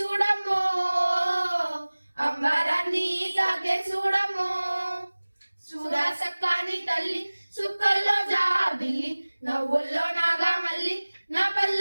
అంబరాన్ని తాకే చూడమ్మో చూడా సక్కాని తల్లి సుక్కల్లో జాబిల్లి నవ్వుల్లో నాగా మల్లి నా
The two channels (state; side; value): inverted; both; correlation -1.00